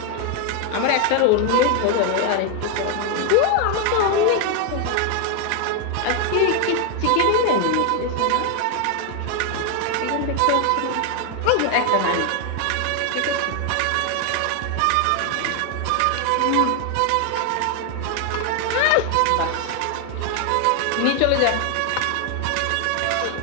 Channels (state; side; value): different; both; correlation 0.01